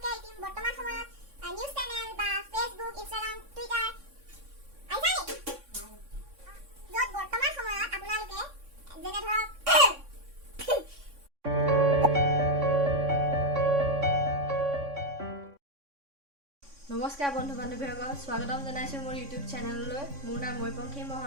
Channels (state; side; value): late; left; 3.6 ms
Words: বৰ্তমান সময়ত নিউজ চেনেল বা ফেচবুক ইনষ্টাগ্ৰাম টুইটাৰ য'ত বৰ্তমান সময়ত আপোনালোকে যেনে ধৰক নমস্কাৰ বন্ধু বান্ধৱীসকল স্বাগতম জনাইছোঁ মোৰ ইউটিউব চেনেললৈ মোৰ নাম পাংখি